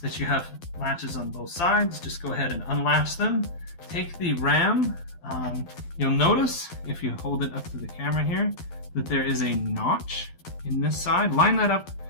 you have latches on both sides, just go ahead and unlatch them. Take the RAM. You'll notice, if you hold it up to the camera here, that there is a notch in this side. Line that up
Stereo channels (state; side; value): late; right; 12 ms